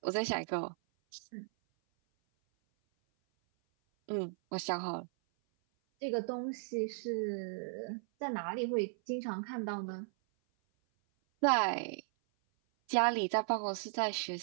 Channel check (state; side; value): silent; left; 54 dB below the other